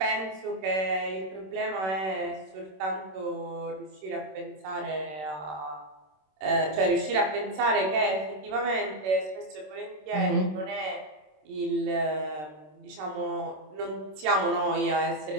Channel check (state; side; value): late; left; 26 ms